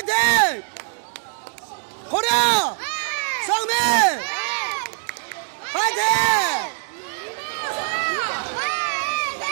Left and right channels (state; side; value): silent; left; digital silence